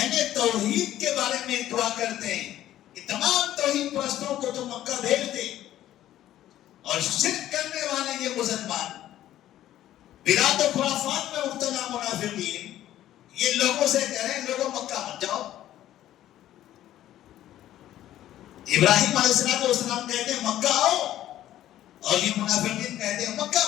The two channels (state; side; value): quieter; right; 12.9 dB